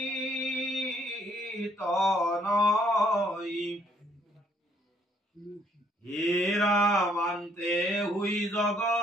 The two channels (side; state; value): both; normal; correlation 0.66